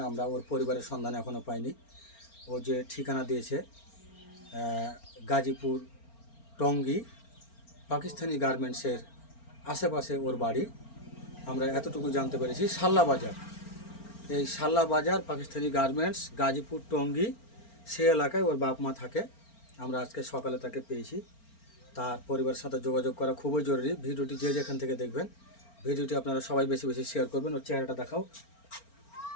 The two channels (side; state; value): right; late; 4.4 ms